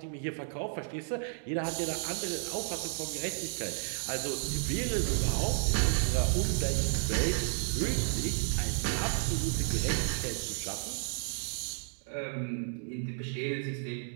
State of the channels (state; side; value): silent; left; digital silence